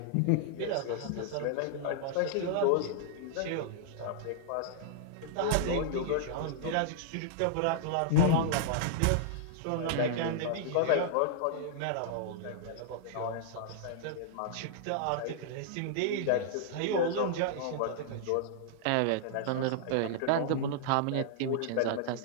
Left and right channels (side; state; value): both; different; correlation -0.01